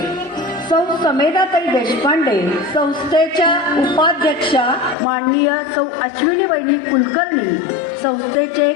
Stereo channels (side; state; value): right; drops out; at 5.0 s